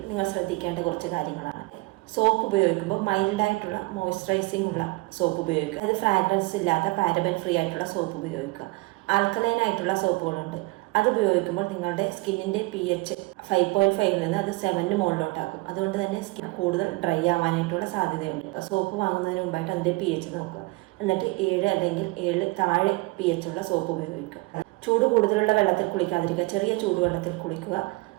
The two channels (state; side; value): quieter; left; 23.7 dB